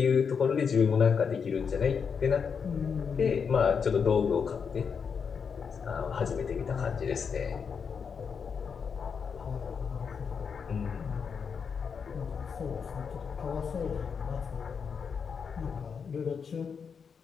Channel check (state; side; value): quieter; right; 6.2 dB